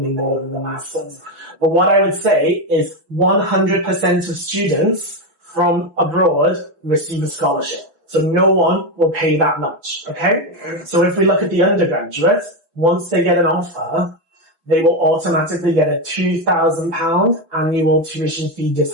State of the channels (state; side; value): late; left; 6.0 ms